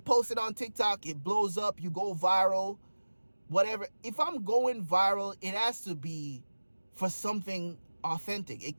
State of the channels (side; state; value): both; inverted; correlation -1.00